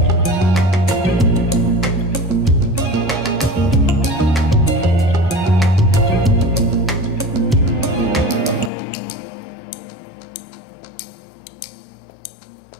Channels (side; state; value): right; drops out; at 8.7 s